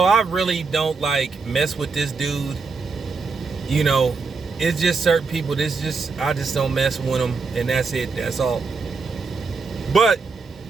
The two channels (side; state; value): left; quieter; 4.6 dB